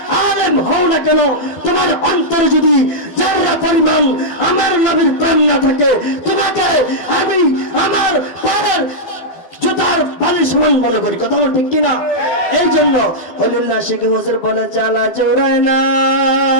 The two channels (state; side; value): late; right; 12 ms